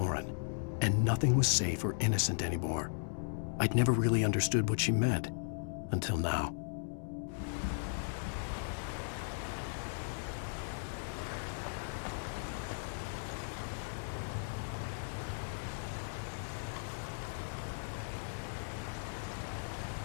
and nothing was safe or innocent anymore. I'd never really understood what she meant, until now.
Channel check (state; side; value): silent; right; digital silence